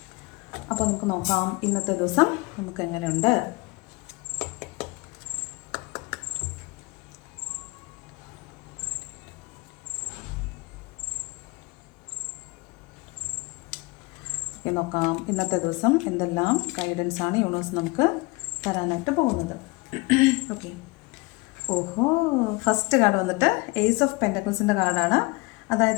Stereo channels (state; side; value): quieter; right; 25.1 dB